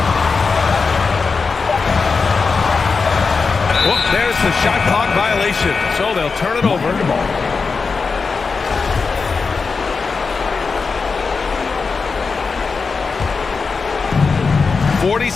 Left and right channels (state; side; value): quieter; right; 4.8 dB